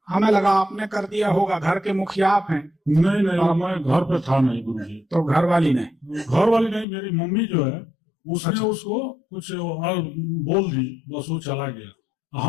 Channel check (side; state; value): right; drops out; at 6.9 s